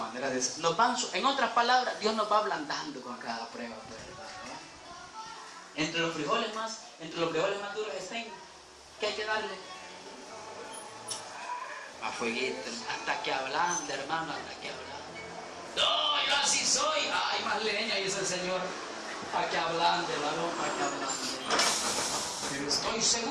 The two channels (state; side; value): identical; both; correlation 1.00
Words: de ser. En otras palabras, Dios nos va ablandando con cada prueba, ¿verdad? Entre los frijoles más duros estén, ¿qué hay que darle? A fueguito, hasta que ablande, hermano, hasta que ablande. No, yo así soy. Ay, más leña, dice el Señor. Para que ablande, varón, para que ablande. Pero estoy